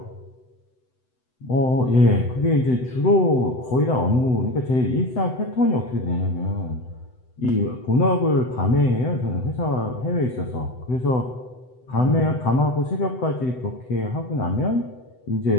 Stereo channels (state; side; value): late; right; 7.9 ms